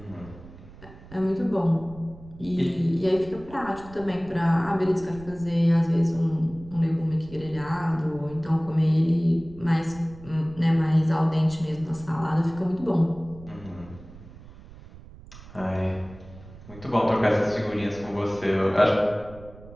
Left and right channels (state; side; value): noise; right; rumble, 19 dB below the sound